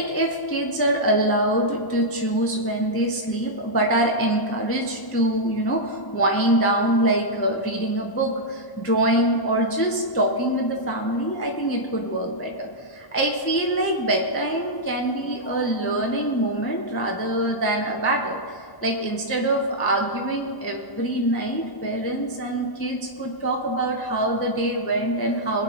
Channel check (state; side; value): late; right; 1.0 ms